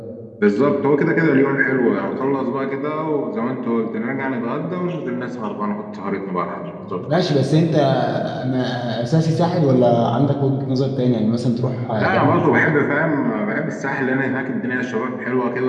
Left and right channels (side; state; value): both; identical; correlation 1.00